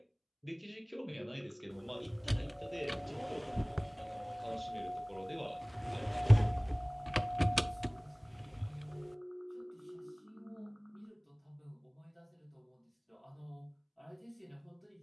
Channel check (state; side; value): identical; both; correlation 1.00